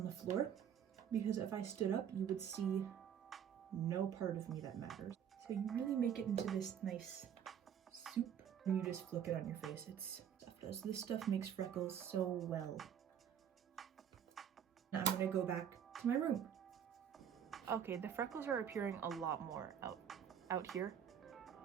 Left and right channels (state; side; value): quieter; left; 8.7 dB